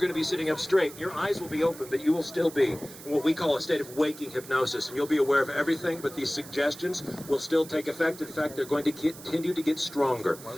going to be sitting up straight. Your eyes will be open, but you will still be in what we call a state of waking hypnosis, and you'll be aware of everything, but these suggestions will still take effect. In fact, they're going to continue to get stronger.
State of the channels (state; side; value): noise; right; hiss, 16 dB below the sound